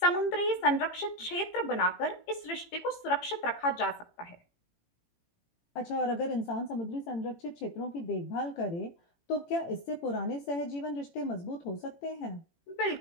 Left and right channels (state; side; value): late; right; 18 ms